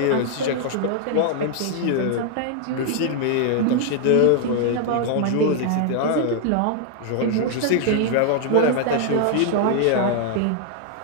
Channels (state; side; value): different; both; correlation 0.00